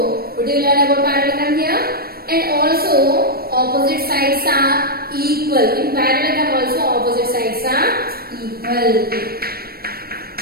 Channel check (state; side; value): late; left; 0.44 ms